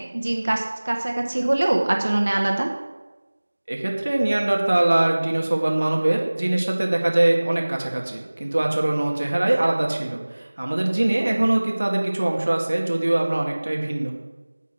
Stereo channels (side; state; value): both; inverted; correlation -1.00